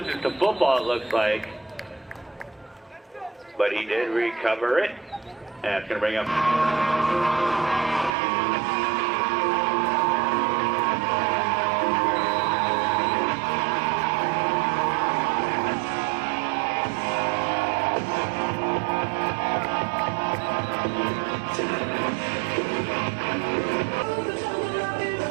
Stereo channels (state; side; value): drops out; left; at 8.1 s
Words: the football, it looks like. But he did recover it. And it's going to bring up...